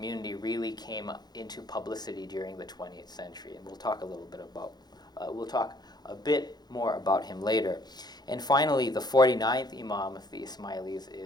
really came into publicity during the 20th century. And we'll talk a bit more about him later. And finally, the 49th Imam of the Ismailis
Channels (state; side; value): late; right; 0.20 ms